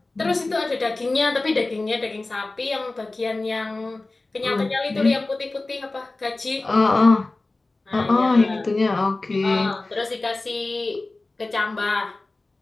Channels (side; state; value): right; quieter; 3.2 dB